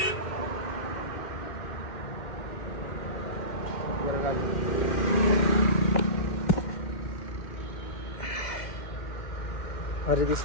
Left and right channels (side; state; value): right; late; 2.1 ms